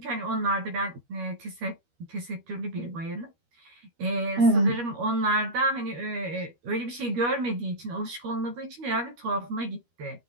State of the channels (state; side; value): late; left; 13 ms